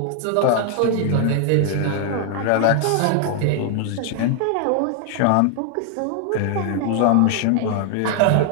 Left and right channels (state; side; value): different; both; correlation 0.00